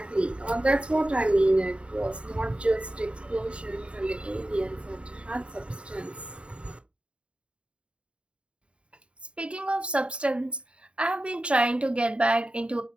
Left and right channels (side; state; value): left; late; 0.058 ms